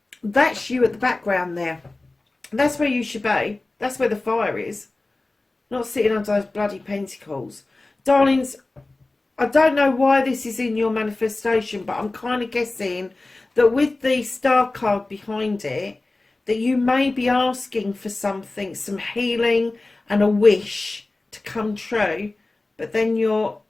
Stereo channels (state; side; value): quieter; right; 3.1 dB